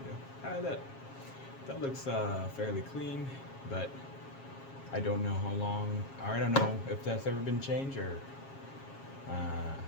go. That looks fairly clean, but I don't know how long, or I don't know if that's ever been changed or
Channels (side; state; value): right; late; 7.4 ms